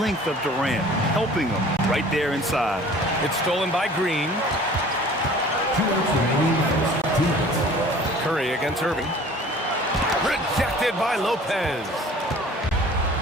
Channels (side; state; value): both; normal; correlation 0.48